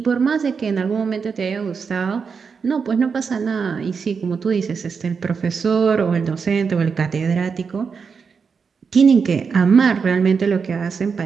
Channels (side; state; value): left; quieter; 5.7 dB